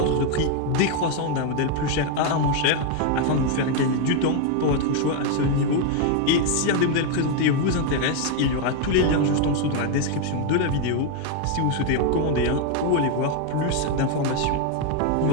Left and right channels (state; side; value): different; both; correlation 0.01